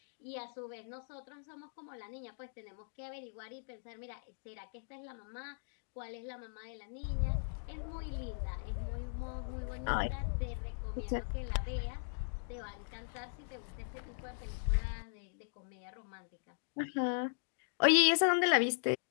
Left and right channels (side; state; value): right; silent; digital silence